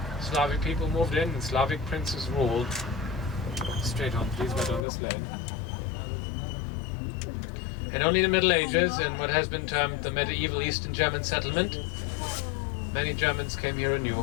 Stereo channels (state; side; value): drops out; right; at 4.8 s